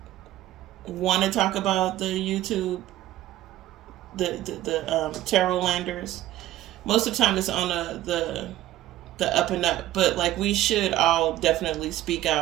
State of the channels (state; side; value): quieter; left; 14.3 dB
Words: want to talk about the YouTube, the tarot landers. Most of the time, it's on the up and up. But like, we should all definitely speak